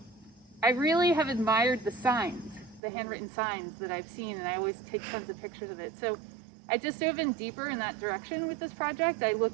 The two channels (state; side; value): drops out; left; at 2.8 s